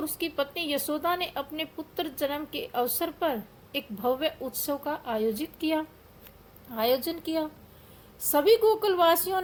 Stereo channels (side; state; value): both; identical; correlation 1.00